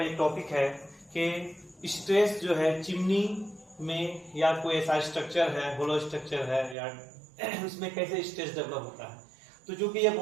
एक टॉपिक है कि स्ट्रेस जो है चिमनी में या कोई ऐसा स्ट्रक्चर है, होलो स्ट्रक्चर है या उसमें कैसे स्ट्रेस डेवलप होता है। तो जो कि ये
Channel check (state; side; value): drops out; left; at 6.8 s